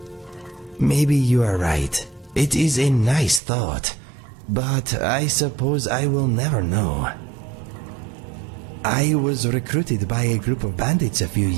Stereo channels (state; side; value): drops out; left; at 3.4 s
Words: Maybe you are right. It is a nice thought, but I suppose I will never know. I was recruited by a group of bandits a few